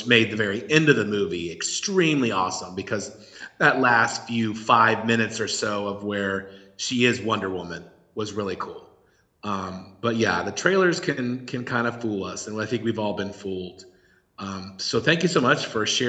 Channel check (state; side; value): identical; both; correlation 1.00